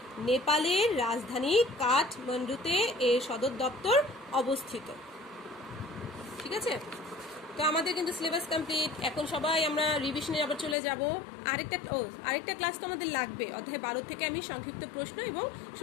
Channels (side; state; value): right; drops out; at 10.8 s